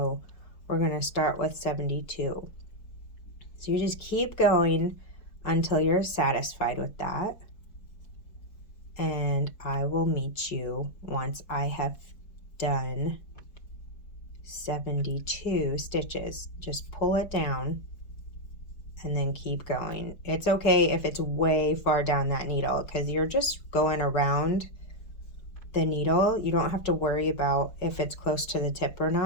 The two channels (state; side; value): late; right; 4.6 ms